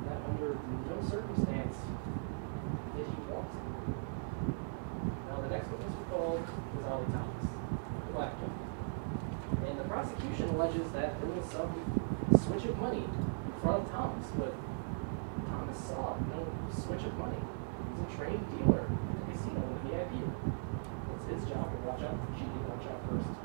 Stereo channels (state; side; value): silent; left; digital silence